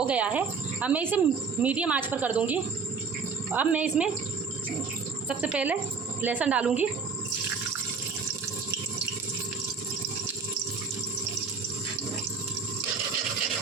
गया है, अब मैं इसे मीडियम आंच पर कर दूंगी। अब मैं इसमें सबसे पहले लहसुन डालूंगी।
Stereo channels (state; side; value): quieter; left; 5.1 dB